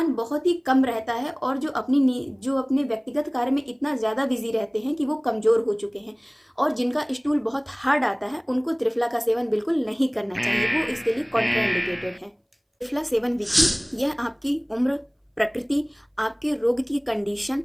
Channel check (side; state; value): both; identical; correlation 1.00